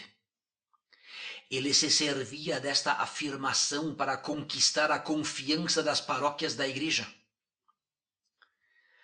Ele se servia desta afirmação para conquistar a confiança das paróquias da igreja.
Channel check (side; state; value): both; identical; correlation 1.00